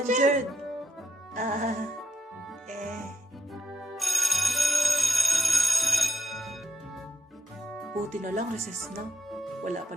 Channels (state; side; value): normal; both; correlation 0.75